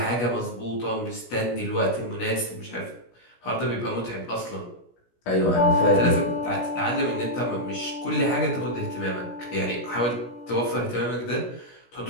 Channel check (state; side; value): late; right; 17 ms